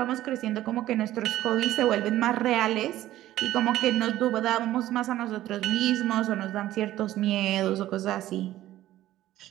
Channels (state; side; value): quieter; left; 14.3 dB